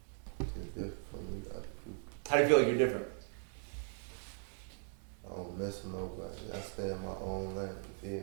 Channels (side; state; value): left; silent; 52 dB below the other